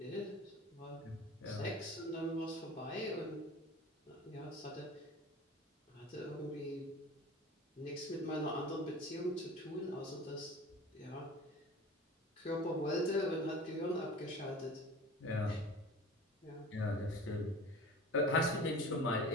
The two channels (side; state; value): both; normal; correlation 0.39